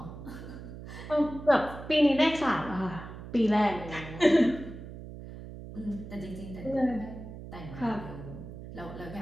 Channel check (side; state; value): right; noise; hum, 12 dB below the sound